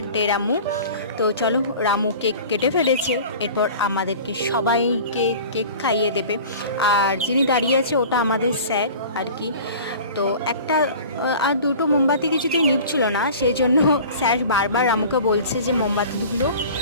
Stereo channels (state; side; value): inverted; both; correlation -0.40